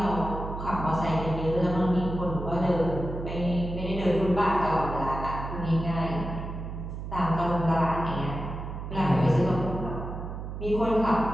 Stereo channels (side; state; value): right; noise; hum, 7 dB below the sound